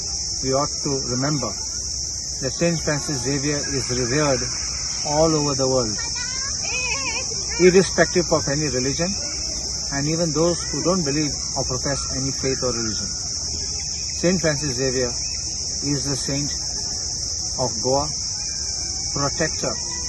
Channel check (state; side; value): identical; both; correlation 1.00